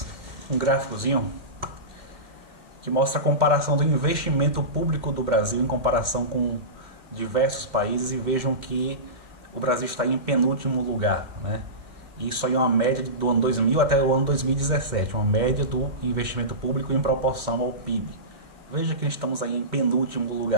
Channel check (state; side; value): late; left; 2.0 ms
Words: um gráficozinho que mostra a comparação do investimento público do Brasil em comparação com diversos países, e vejam que o Brasil está em penúltimo lugar, né? Isso aí é uma média do ano 2000 até o ano 2017, uma média do investimento público em proporção ao PIB. Veja que estamos aí em penúltimo